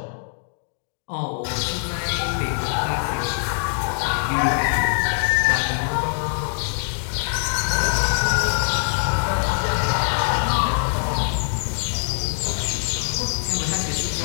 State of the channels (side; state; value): right; silent; digital silence